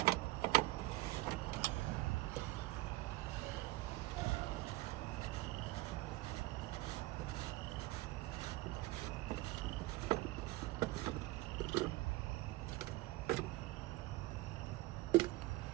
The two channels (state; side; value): quieter; left; 19.6 dB